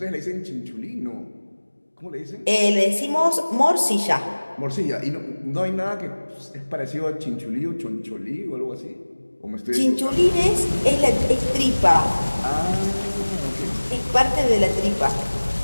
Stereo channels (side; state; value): both; inverted; correlation -1.00